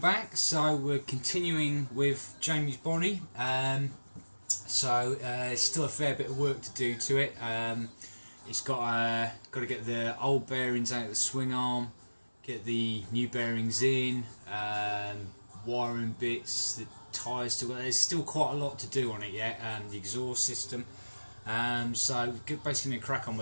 So we're continuing with Jamie's Bonnie. Still a fair bit of work to do to it. It's got to get the old bearings out of the swing arm, get the new bearings in, wiring bits, the tyres still. There's still quite a lot to do on it yet. The exhaust system. So basically going to crack on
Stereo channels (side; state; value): both; inverted; correlation -1.00